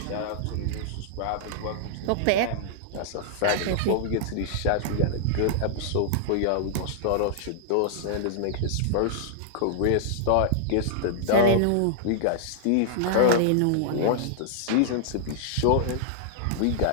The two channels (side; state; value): both; different; correlation -0.01